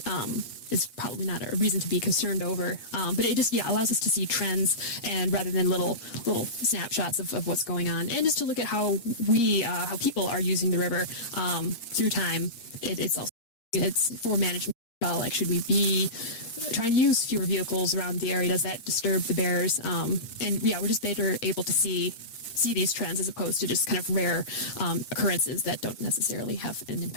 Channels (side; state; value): right; late; 8.5 ms